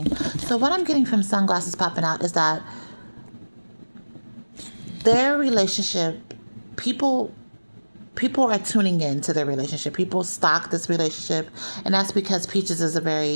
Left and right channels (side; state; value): both; inverted; correlation -1.00